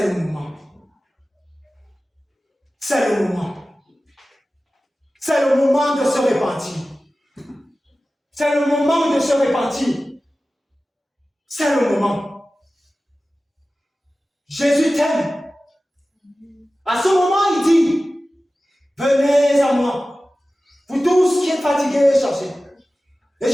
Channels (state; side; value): normal; both; correlation 0.96